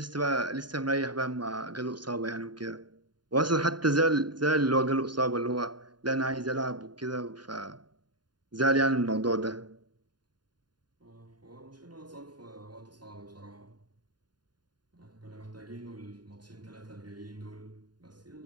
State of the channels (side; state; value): left; late; 0.70 ms